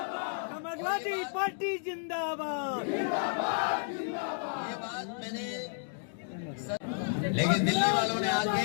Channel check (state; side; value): silent; right; digital silence